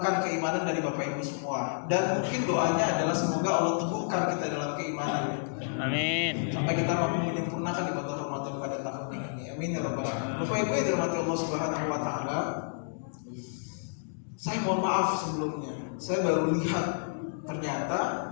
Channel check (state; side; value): silent; right; digital silence